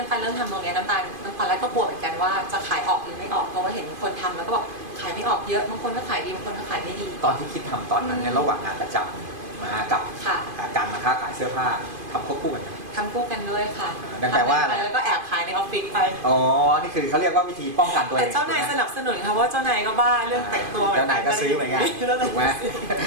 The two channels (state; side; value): late; left; 2.5 ms